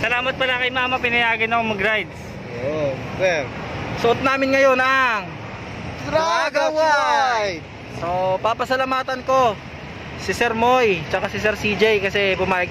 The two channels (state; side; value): identical; both; correlation 1.00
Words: pala kay Mama, pinayagan ako mag-rides. Oh, sir. Suot namin ngayon ang Traga White! So, papasalamatan ko si Sir Moy, tsaka si Sir CJ kasi pumayag